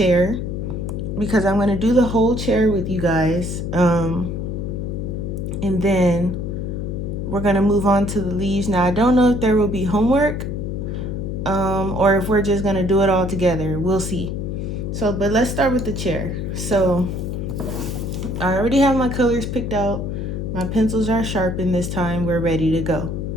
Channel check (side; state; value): left; noise; hum, 4 dB below the sound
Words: because I'm gonna do the whole chair with you guys, and then we're gonna move on to the leaves. Now I don't know if there will be homework or if we're just gonna do it all together. We'll see. So, but let's start with the chair. So I already have my colors picked out. My pencils are sharpened this time. We're ready to go.